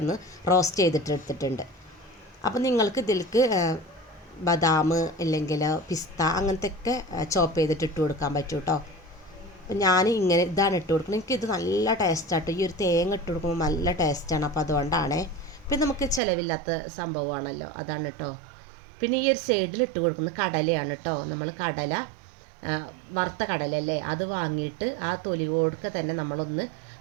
റോസ്റ്റ് ചെയ്തിട്ട് എടുത്തിട്ടുണ്ട്. അപ്പോൾ നിങ്ങൾക്ക് ഇതിലേക്ക് ബദാം അല്ലെങ്കിൽ പിസ്ത അങ്ങനത്തെ ഒക്കെ ചോപ്പ് ചെയ്തിട്ട് ഇട്ട് കൊടുക്കാൻ പറ്റും കേട്ടോ. അപ്പോൾ ഞാൻ ഇങ്ങനെ ഇതാണ് ഇട്ട് കൊടുക്കുന്നത്. എനിക്കിത് നല്ല ടേസ്റ്റാട്ടോ. ഈ ഒരു തേങ്ങ ഇട്ട് കൊടുക്കുമ്പോൾ നല്ല ടേസ്റ്റാണ്. അപ്പോൾ അതുകൊണ്ടാണ്. പിന്നെ നമുക്ക് ചിലവില്ലാത്ത സംഭവമാണല്ലോ, അതാണ് കേട്ടോ. പിന്നെ ഈ ഒരു സൈഡിൽ ഇട്ട് കൊടുക്കുന്നത് കടലയാണ് കേട്ടോ. നമ്മൾ കടല വറുത്ത കടലല്ലേ, അത് വാങ്ങിയിട്ട് ആ തൊലി കൊടുക്കുക തന്നെ നമ്മളൊന്ന്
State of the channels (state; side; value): drops out; left; at 16.2 s